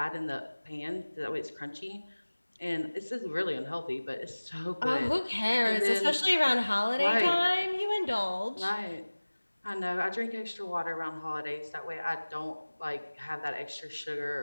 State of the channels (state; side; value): inverted; both; correlation -1.00